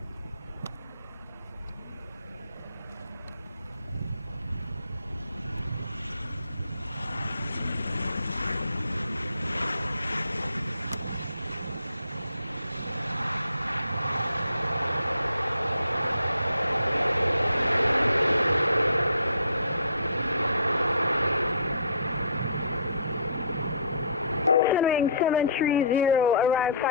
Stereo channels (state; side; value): inverted; both; correlation -0.55